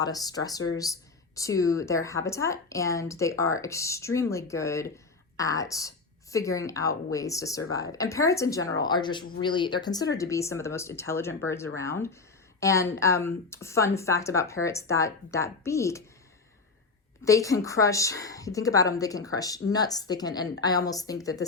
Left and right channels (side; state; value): right; quieter; 4.1 dB